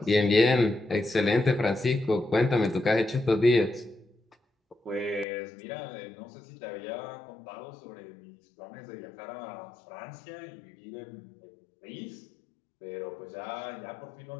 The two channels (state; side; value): drops out; right; at 5.2 s